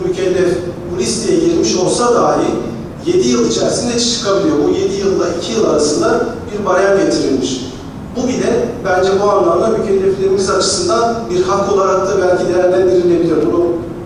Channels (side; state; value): both; identical; correlation 1.00